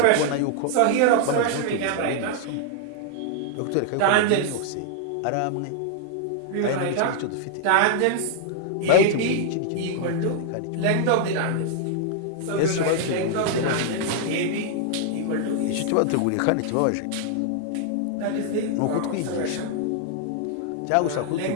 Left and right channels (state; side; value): different; both; correlation 0.00